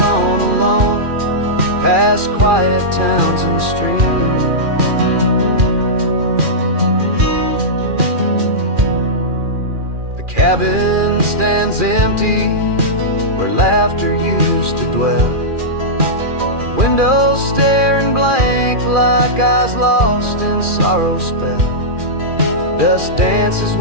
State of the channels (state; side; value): late; left; 2.4 ms